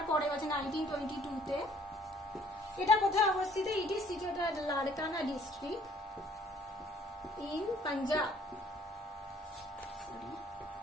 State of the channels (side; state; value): both; normal; correlation 0.59